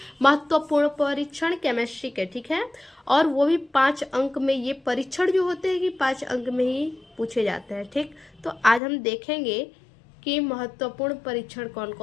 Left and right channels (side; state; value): right; drops out; at 8.8 s